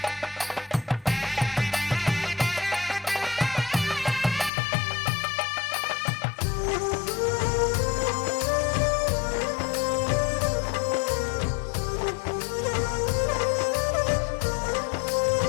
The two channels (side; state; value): right; drops out; at 4.5 s